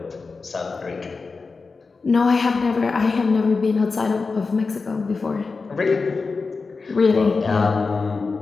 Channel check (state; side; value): quieter; right; 4.3 dB